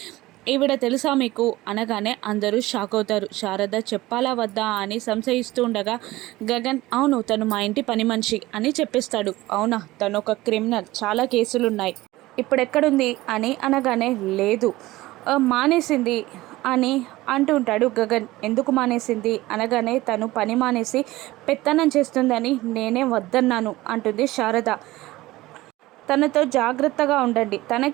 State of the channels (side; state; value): left; quieter; 18.2 dB